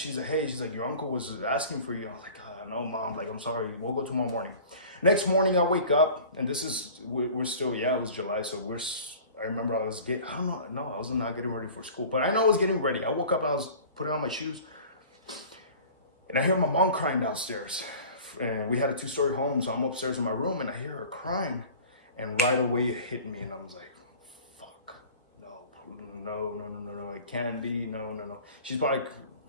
like, hey, she's like, your uncle was asking for you. I was like, no, Mom, like, I'm sorry. We'll go tomorrow morning. Next morning, I wake up, and we're still, it was July. So I remember I was I was not getting ready for school, but I know I was getting ready. I woke up and I was putting on my shoes, and I hear my mom crying downstairs. And we had a 2-story home, so I'm upstairs in my room, and I hear her crying, and right away it hit me, and I was like, fuck, no, it can't be, no. She's probably,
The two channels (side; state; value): both; inverted; correlation -0.42